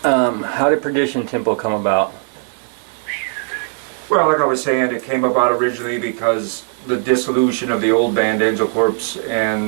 How did Perdition Temple come about? Well, like I was saying, it came about originally because the dissolution of the old band Angel Corpse,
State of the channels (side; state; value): left; silent; 61 dB below the other